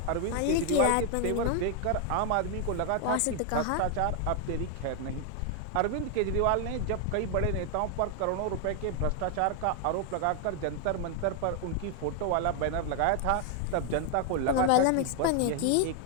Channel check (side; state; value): both; different; correlation 0.00